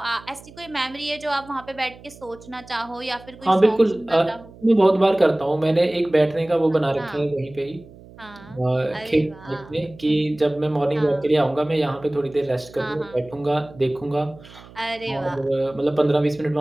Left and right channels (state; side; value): noise; right; hum, 21 dB below the sound